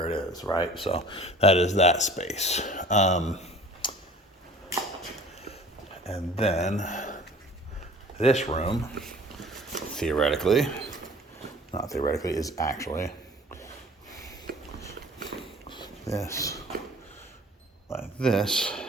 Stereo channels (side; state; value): both; normal; correlation 0.47